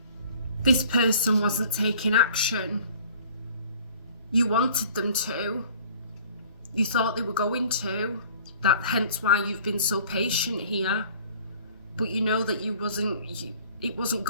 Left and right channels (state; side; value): inverted; both; correlation -0.50